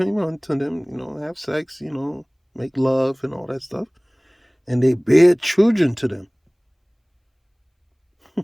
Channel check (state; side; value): identical; both; correlation 1.00